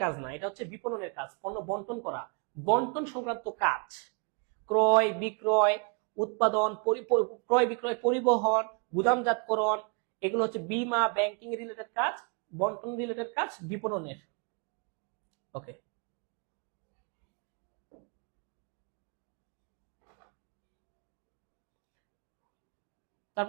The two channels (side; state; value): left; quieter; 35.8 dB